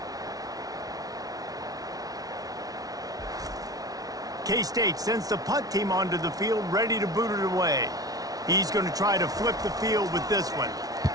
K-State sends the punt team onto the field, ready to boot it away. He's going to try to flip the field with this one.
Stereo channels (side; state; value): left; late; 0.18 ms